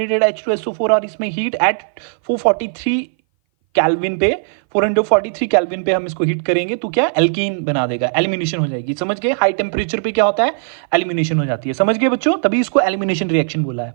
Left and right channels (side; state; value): left; silent; 59 dB below the other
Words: H2SO4 और इसमें हीट एट 443 कैल्विन पे 443 कैल्विन पे हम इसको हीट करेंगे तो क्या एल्कीन बना देगा, एलिमिनेशन हो जाएगी. समझ गए? हाई टेम्परेचर पे क्या होता है? एलिमिनेशन हो जाती है. समझ गए बच्चों? तभी इसको एलिमिनेशन रिएक्शन बोला है.